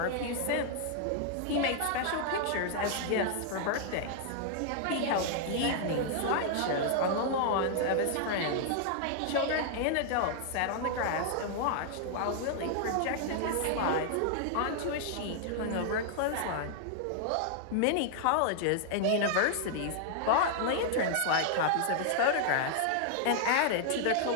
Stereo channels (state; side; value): different; both; correlation -0.01